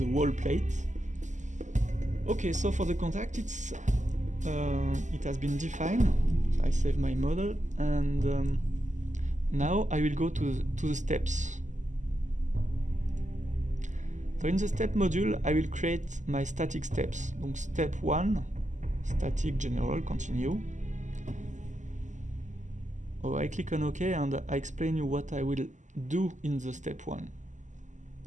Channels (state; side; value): late; left; 0.35 ms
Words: wall plate. Okay, so for the contact, it has been defined. So I save my model, and now I will go to the steps. So in the step module, I will create my static steps. Donc step 1, static general, continue. Oh, I click on OK, and I explain you what I will do in the step 1.